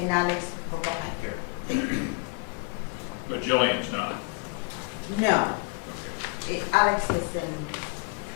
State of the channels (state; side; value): quieter; right; 29.3 dB